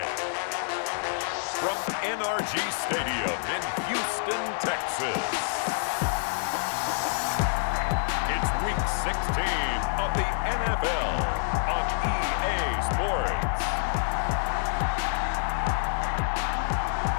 From NRG Stadium in Houston, Texas. It's Week 16 of the NFL on EA Sports.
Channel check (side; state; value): right; silent; digital silence